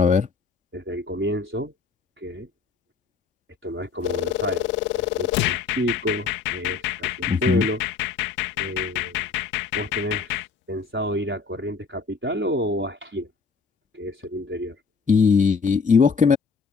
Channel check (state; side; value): quieter; right; 4.8 dB